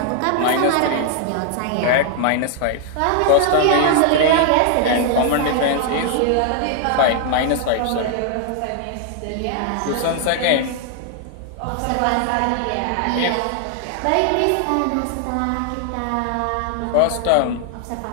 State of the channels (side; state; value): both; different; correlation 0.00